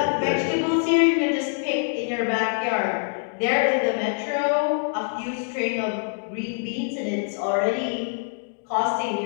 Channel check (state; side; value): silent; right; digital silence